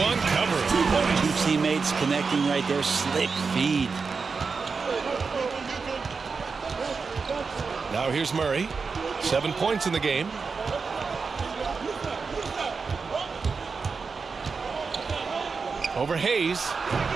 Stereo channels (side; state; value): left; quieter; 4.9 dB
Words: covering. 2 teammates connecting right there. Slick feed. Now here's Murray. 7 points in the game. Over Hayes.